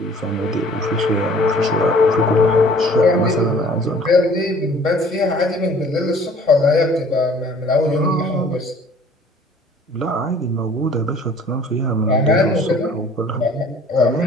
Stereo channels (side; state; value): both; normal; correlation 0.53